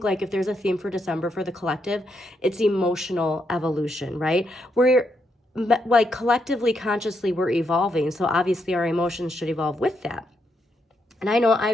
like if there's a theme for December for the collective, it's emotional evolution, right? We're like collectively, consciously, we're evolving. So obviously our emotions should evolve with that. And I know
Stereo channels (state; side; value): normal; both; correlation 0.80